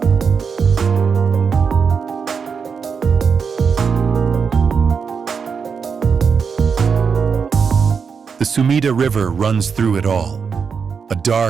The Sumida River runs through it all, a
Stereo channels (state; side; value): quieter; left; 6.0 dB